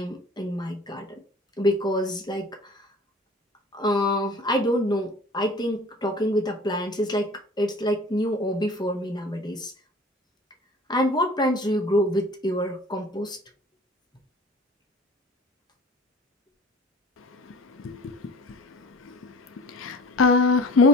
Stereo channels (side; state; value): both; normal; correlation 0.46